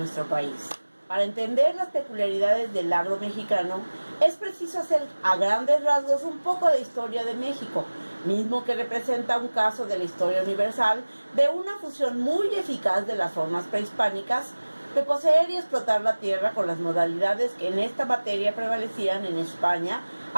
país. Para entender las peculiaridades del agro mexicano, es preciso hacer a grandes rasgos un poco de historia de México, mismo que representa un caso de la historia universal de una fusión muy eficaz de las formas prehispánicas de poseer y explotar la tierra con las modalidades que en esta materia prevalecían en España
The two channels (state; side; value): inverted; both; correlation -1.00